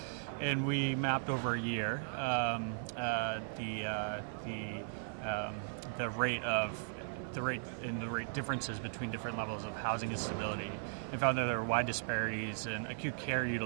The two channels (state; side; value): silent; left; 53 dB below the other